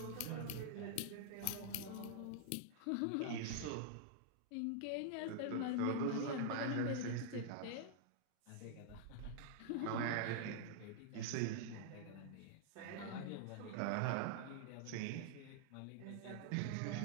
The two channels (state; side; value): different; both; correlation -0.01